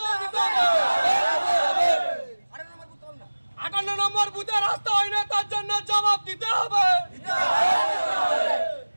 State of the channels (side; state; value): both; inverted; correlation -1.00